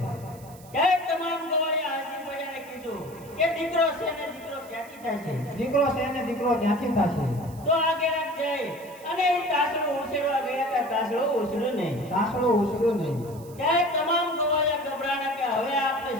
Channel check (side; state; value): right; noise; hiss, 22 dB below the sound